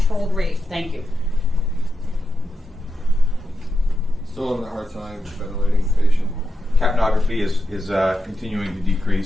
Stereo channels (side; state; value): both; normal; correlation 0.87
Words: rate. Thank you. Still having a hard time ventilating the patient. Capnography is continuing to